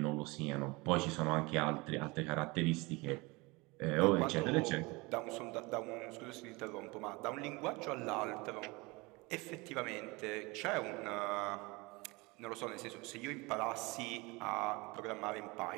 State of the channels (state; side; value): quieter; left; 24.8 dB